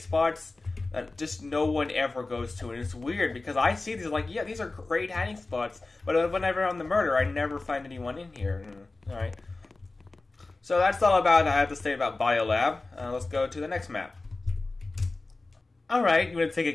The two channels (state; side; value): quieter; right; 3.3 dB